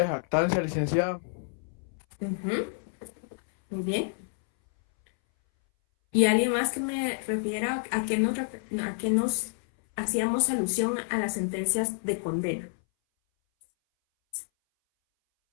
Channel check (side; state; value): right; silent; 59 dB below the other